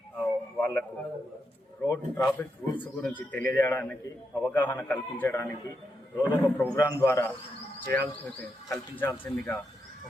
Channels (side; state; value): both; normal; correlation 0.83